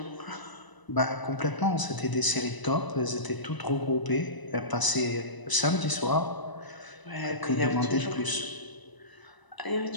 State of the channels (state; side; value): late; right; 1.0 ms